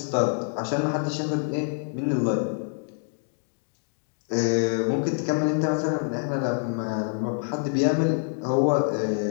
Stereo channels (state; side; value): silent; right; 57 dB below the other